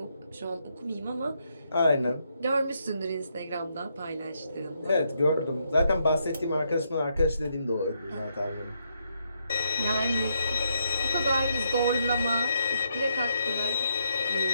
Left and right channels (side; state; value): both; inverted; correlation -0.77